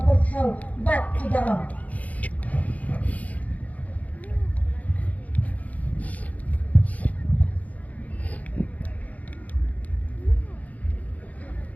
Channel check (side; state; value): right; late; 0.073 ms